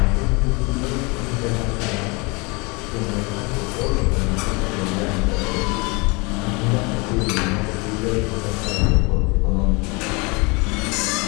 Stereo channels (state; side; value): quieter; right; 28.2 dB